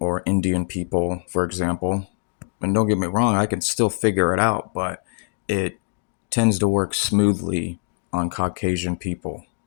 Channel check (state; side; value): silent; right; digital silence